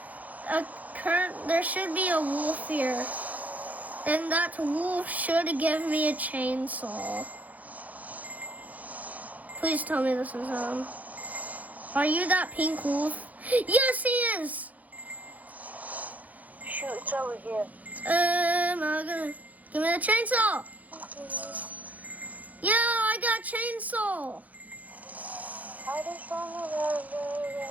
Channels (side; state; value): left; late; 0.077 ms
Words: there should be a wolf here. And that wolf should give me a chainsaw. Please tell me this is him. Are you that pink wolf? Yes, he is! Shoot, it's over here. Give me the chainsaw! Yeah, I got chainsaw!